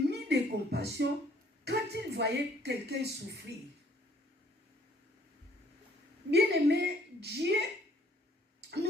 de compassion quand il voyait quelqu'un souffrir. Bien-aimé, Dieu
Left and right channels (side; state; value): both; normal; correlation 0.61